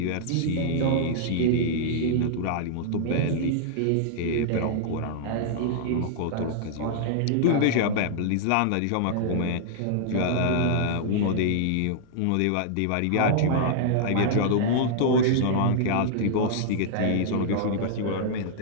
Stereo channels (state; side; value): different; both; correlation -0.01